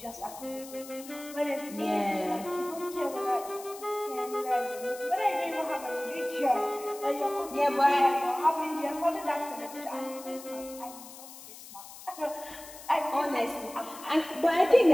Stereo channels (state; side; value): noise; left; hiss, 16 dB below the sound